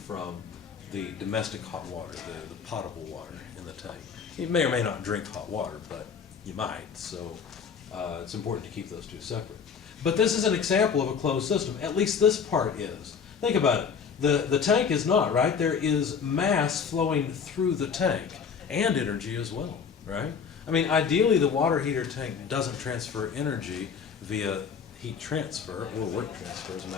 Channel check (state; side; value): quieter; right; 6.4 dB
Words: the domestic hot water, the potable water in the tank. You may or may not drink hot water, but you might, so it's important to keep those two separate. But this is an example of a closed system. At least this part is. Think about it. The tank is not, right? There is mass flowing through the tank and energy as well, right? I mean, ideally the water heater tank doesn't transfer energy via heat transfer or work transfer, as a